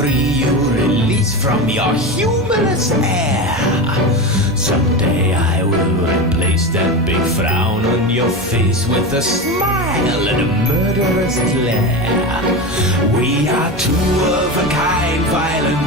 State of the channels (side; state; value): both; normal; correlation 0.22